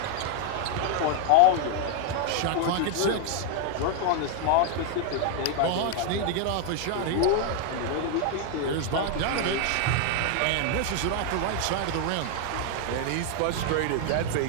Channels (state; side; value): different; both; correlation 0.00